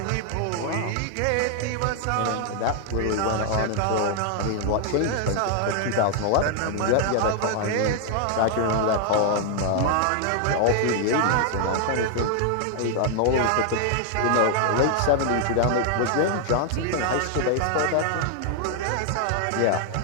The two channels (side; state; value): both; different; correlation 0.00